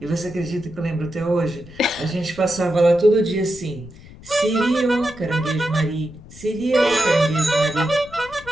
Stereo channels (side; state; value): left; noise; rumble, 19 dB below the sound